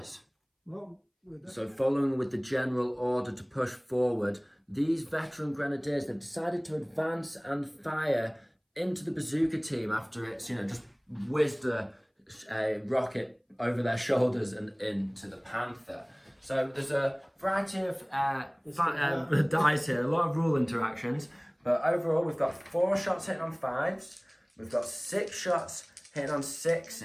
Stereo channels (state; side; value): identical; both; correlation 1.00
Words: So following with the general order to push forward, these veteran grenadiers, they've decided to advance and fire into the bazooka team after it's, just whizzed a rocket over their shoulders and into the Panther. So there's a variety of dice here, a lot of rule interactions, but overall we've got 4 shots hitting on 5s, we've got 6 shots hitting on